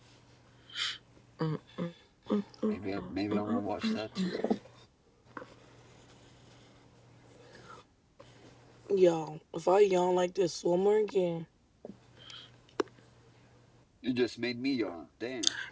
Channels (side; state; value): both; identical; correlation 1.00